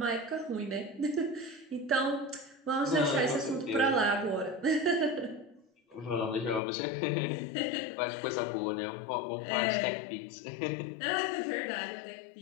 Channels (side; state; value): right; drops out; at 6.6 s